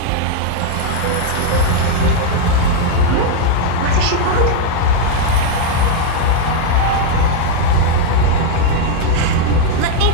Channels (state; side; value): different; both; correlation 0.00